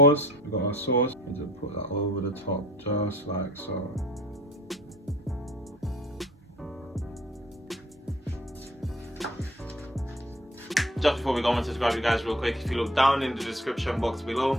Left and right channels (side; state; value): both; normal; correlation 0.51